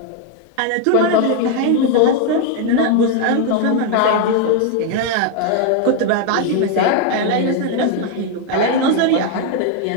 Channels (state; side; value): different; both; correlation 0.01